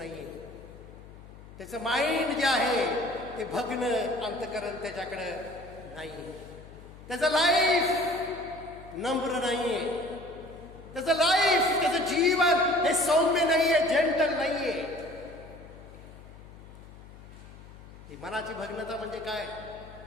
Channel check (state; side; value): noise; left; hum, 18 dB below the sound